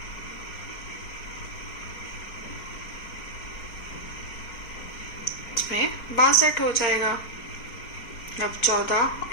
इसमें 62 हो जाएगा। अब 14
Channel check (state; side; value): late; right; 4.5 ms